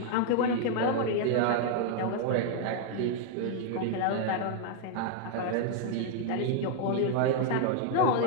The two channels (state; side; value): different; both; correlation 0.00